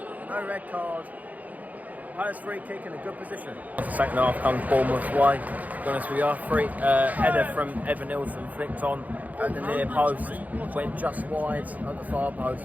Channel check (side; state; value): left; late; 0.078 ms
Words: No red card. Palace free kick in a good position. Second half comes Bournemouth's way. To be honest with you, header from Evan Nilsson flicked on at the near post, went just wide at the far